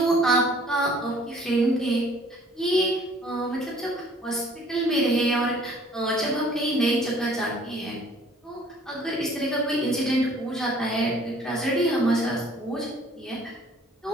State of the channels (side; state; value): both; normal; correlation 0.55